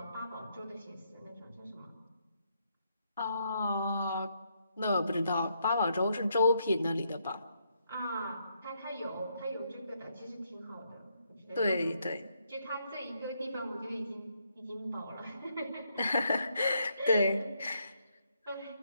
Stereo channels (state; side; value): inverted; both; correlation -0.76